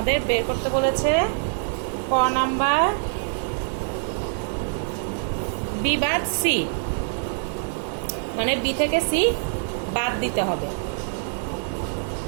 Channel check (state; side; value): silent; left; digital silence